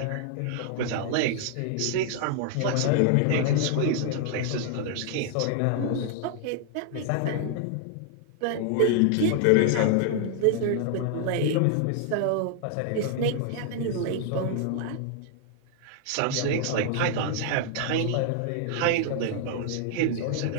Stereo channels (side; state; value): both; different; correlation 0.00